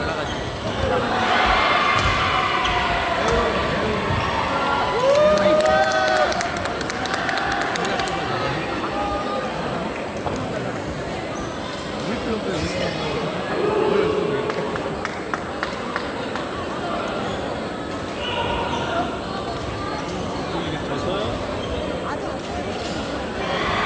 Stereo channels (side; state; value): both; identical; correlation 1.00